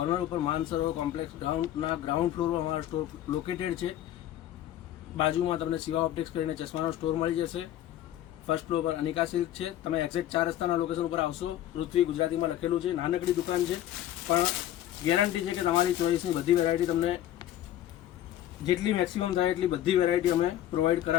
ઉપર માનસરોવર કોમ્પ્લેક્સ ગ્રાઉન્ડ ફ્લોર પર અમારો સ્ટોર લોકેટેડ છે. બાજુમાં તમને શિવા ઓપ્ટિક્સ કરીને ચશ્માનો સ્ટોર મળી જશે. ફર્સ્ટ ફ્લોર પર અનિકા સિલ્ક છે. તમે એક્ઝેક્ટ 4 રસ્તાના લોકેશન ઉપર આવશો. પૃથ્વી ગુજરાતીમાં લખેલું છે. નાનકડી દુકાન છે પણ ગેરંટી છે કે તમારી ચોઈસની બધી વેરાયટી તમને જેટલી મેક્સિમમ થાય એટલી બધી વેરાયટી અમે પ્રોવાઈડ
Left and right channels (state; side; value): quieter; right; 12.4 dB